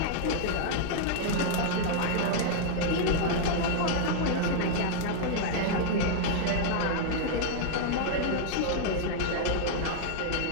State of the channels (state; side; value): different; both; correlation -0.01